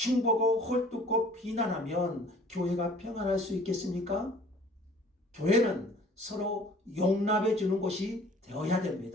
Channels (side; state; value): both; normal; correlation 0.51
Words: 헐뜯고 비난하면 교회가 평안할 수 있겠습니까? 교회는 서로 용납해 주는 곳이 되어야